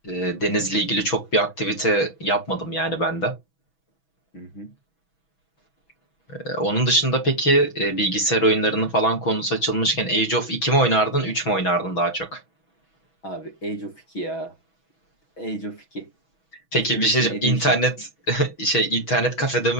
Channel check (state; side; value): late; right; 6.2 ms